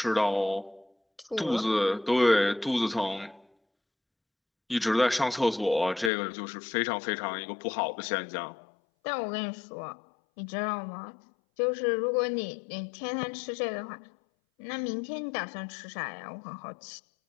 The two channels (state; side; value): drops out; right; at 6.1 s